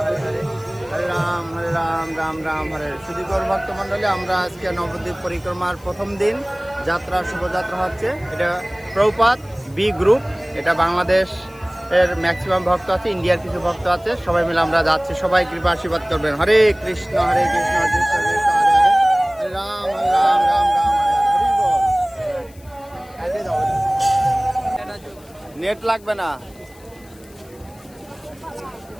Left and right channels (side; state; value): left; noise; hiss, 26 dB below the sound